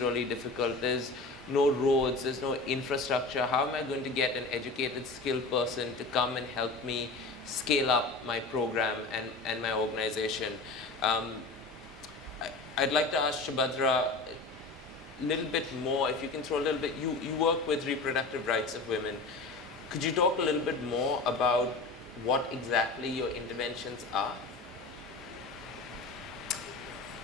really difficult. There's no roads, there's no infrastructure. How am I going to get an educated, skilled person to come and help me scale up my program and my organization? I'd like to ask Shubhatra a little bit more, if you can throw a little bit, you work with reproductive rights of women. Could you talk a little bit more about what exactly your interventions are?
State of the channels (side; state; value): right; quieter; 3.5 dB